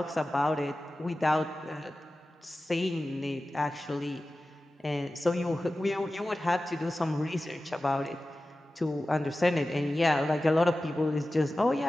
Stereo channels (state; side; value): normal; both; correlation 0.95